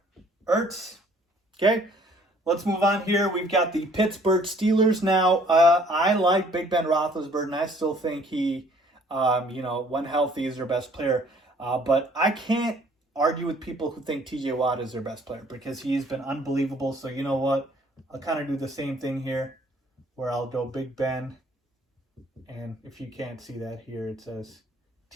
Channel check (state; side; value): normal; both; correlation 0.59